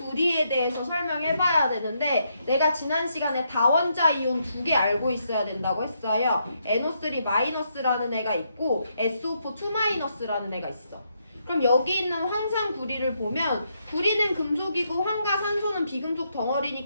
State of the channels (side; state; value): both; inverted; correlation -0.78